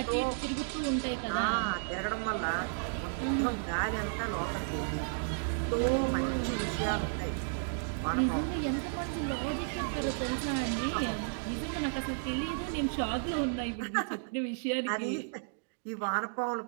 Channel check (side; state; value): left; silent; digital silence